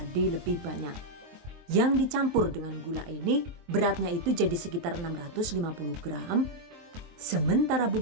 lebih banyak. Yang dicampur dengan gula ini, beratnya itu jadi sekitar 650 gram. Sementara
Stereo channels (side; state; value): left; late; 23 ms